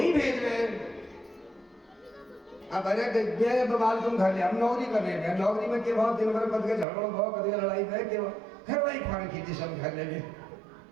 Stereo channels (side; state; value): left; drops out; at 6.9 s